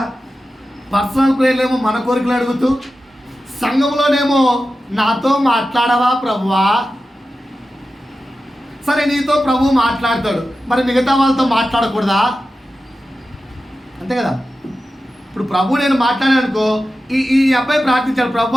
పర్సనల్ ప్రేయర్లో ఏమో మన కోరికలు అడుగుతూ, సంఘంలోనేమో నాతో మాట్లాడవా ప్రభువా? సరే, నీతో ప్రభు మాట్లాడతాడు, మరి మిగతా వాళ్ళతో మాట్లాడకూడదా? అంతే కదా. ఇప్పుడు ప్రభు నేను మాట్లాడాను అనుకో, ఈ అబ్బాయి ప్రార్థించాడు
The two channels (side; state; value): both; normal; correlation 0.93